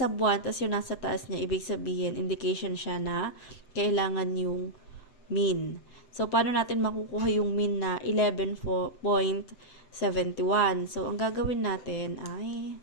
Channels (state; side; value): late; right; 7.9 ms